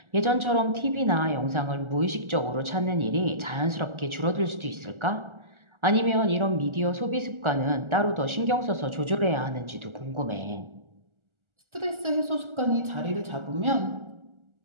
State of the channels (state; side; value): late; left; 1.4 ms